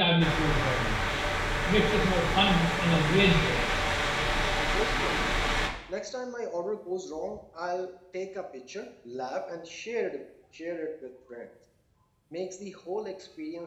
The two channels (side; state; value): both; identical; correlation 1.00